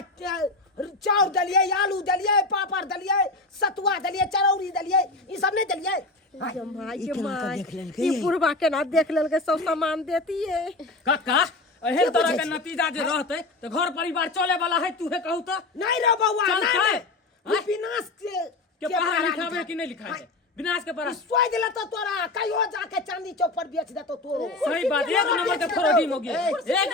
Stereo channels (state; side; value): quieter; right; 3.1 dB